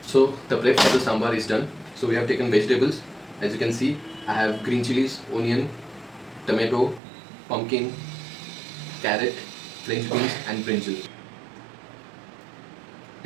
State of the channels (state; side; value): drops out; left; at 7.0 s